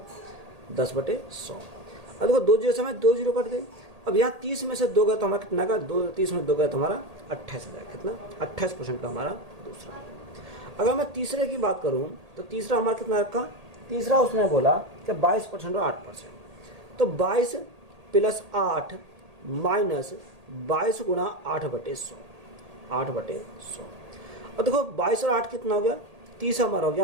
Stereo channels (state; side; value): late; left; 1.8 ms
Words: 10/100। अब देखो दो जीरो समय 2 जीरो कट गई। अब यहाँ 30 में से 2 गया तो हमारा कितना का 30 में 2 गया तो हमारा 28 आ जाएगा। कितना 28% का हमारा दूसरा। अगर मैं तीसरे की बात करूँ तो तीसरा हमारा कितना रखा, तीसरा उसने बोला कि 22% और 8%। तो 22 प्लस 8 माइनस 22 गुना 8/100, 8/100। और देखो 22 और 8 कितना हो गया, 30 हमारा हो